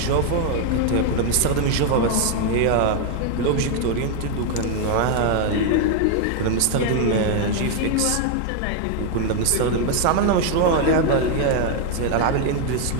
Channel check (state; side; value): different; both; correlation 0.00